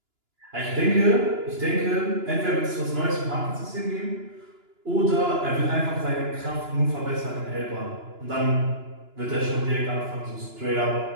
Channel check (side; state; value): left; late; 2.9 ms